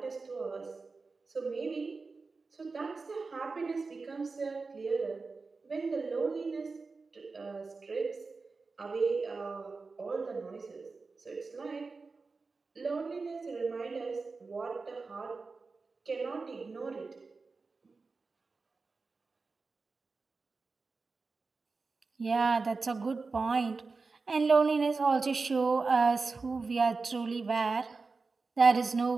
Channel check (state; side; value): quieter; left; 4.2 dB